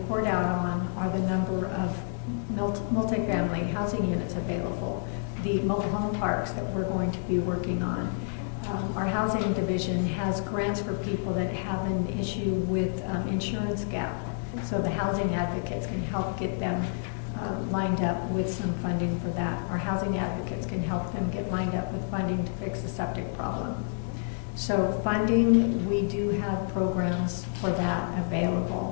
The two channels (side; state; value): right; silent; digital silence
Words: out on are the number of multifamily housing units available, the mobile home parks that we're going to be working on. Our housing division has grants for people that have an issue with insurance gap. So the housing advocates can help get them lined up with some funding for that. Our housing advocates can help them get lined up with funding to fix the septic problem. So funding, we do have programs for that